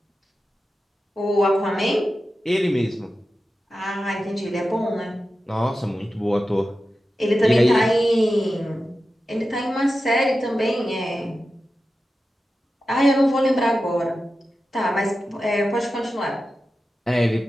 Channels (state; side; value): normal; both; correlation 0.92